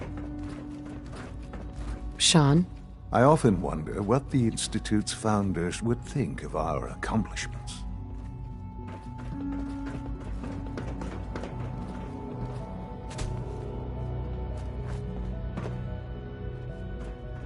Sean? I often wonder what the Institute's founders would think of our accomplishments.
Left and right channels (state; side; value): identical; both; correlation 1.00